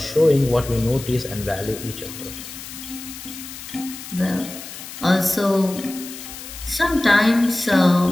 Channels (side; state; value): left; noise; hiss, 12 dB below the sound